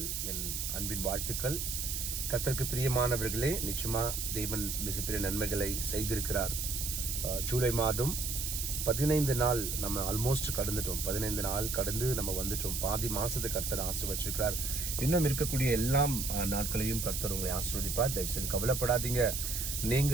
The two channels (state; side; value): noise; right; hiss, 3 dB below the sound